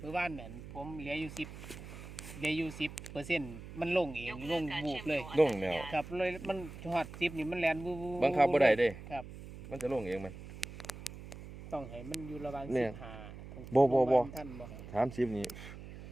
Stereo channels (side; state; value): right; noise; hum, 13 dB below the sound